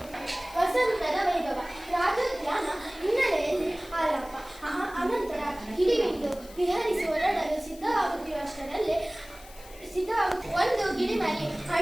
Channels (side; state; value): left; noise; hiss, 20 dB below the sound